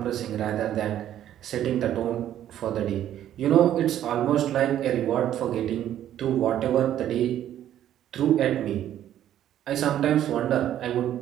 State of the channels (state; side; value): quieter; left; 11.4 dB